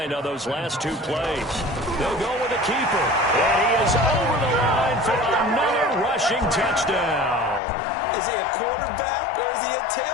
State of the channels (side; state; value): right; drops out; at 7.6 s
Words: on those last 2 plays. They'll go with the keeper. And he is over the line for another rushing touchdown. Is he a quarterback or is he a